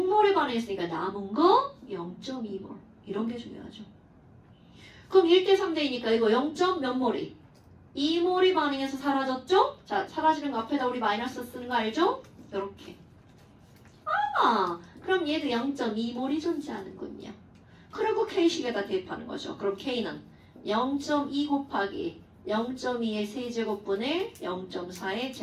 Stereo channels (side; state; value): both; identical; correlation 1.00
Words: 반응했으니까 남은 거 0.2몰. 이런 게 중요하죠. 그럼 1대 3대이니까 이거 0. 몇 몰이? 2몰이 반응해서 사라졌죠? 자, 사라지는 거 앞에다 우리 마이너스 쓰는 거 알죠? 이렇게. 그럼 얘도 0.2몰이 존재하는군요. 그리고 K식에다 대입하는 거죠. 그럼 K는 0.2 곱하기 0.2의 세제곱분의 0.4의